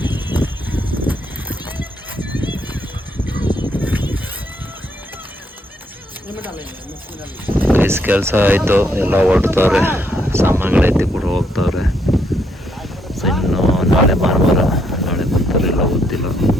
ಕೆಲಸ ಆಯಿತು, ಎಲ್ಲ ಹೊರಡ್ತವ್ರೆ, ಸಾಮಾನುಗಳು ಎತ್ತಿ ಕೂಡ ಹೋಗ್ತವ್ರೆ. ಸೊ ಇನ್ನು ನಾಳೆ ಭಾನುವಾರ, ನಾಳೆ ಬರ್ತಾರೆ ಎಲ್ಲ ಗೊತ್ತಿಲ್ಲ.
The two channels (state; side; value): normal; both; correlation 0.74